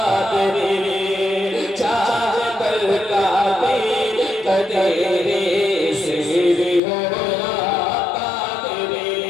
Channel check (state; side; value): drops out; right; at 6.8 s